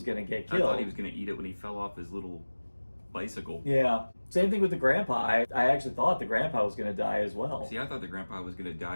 going to get killed. I thought he was going to eat it when he fell off his little bicycle. Yeah. Same thing with the grandpa. I actually thought the grandpa was going to die as well. See, I thought the grandpa was going to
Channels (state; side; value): inverted; both; correlation -1.00